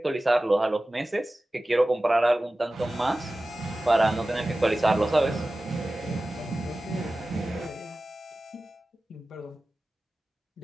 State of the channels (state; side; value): normal; both; correlation 0.96